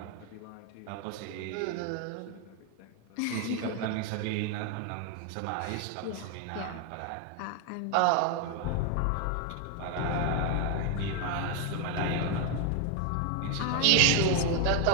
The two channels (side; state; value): both; different; correlation 0.01